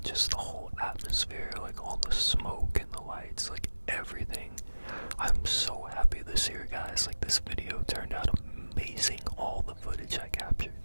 just the whole atmosphere, like all the smoke and the lights, like everything. I'm so happy this year, guys. Like this video turned out amazing. All the footage I captured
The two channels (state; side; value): inverted; both; correlation -1.00